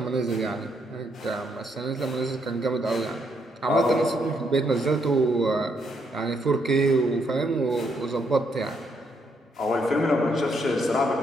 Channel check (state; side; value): normal; both; correlation 0.75